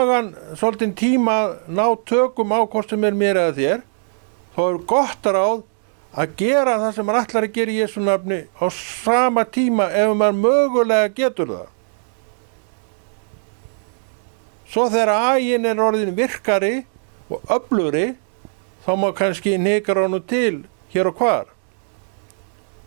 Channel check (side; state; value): left; silent; 63 dB below the other